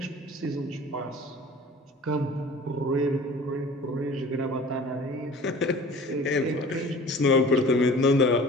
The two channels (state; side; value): normal; both; correlation 0.44